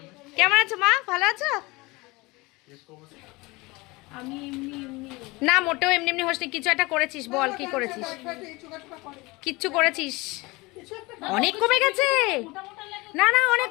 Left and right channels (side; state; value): right; quieter; 23.5 dB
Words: কেমন আছো মা, ভালো আছো? আমি না, মোটেও এমনি এমনি হোসনি, কিছু একটা করেছিস, বল কি করেছিস? কিচ্ছু করেছিস? অনেক কমে গেছে। না না, অনেক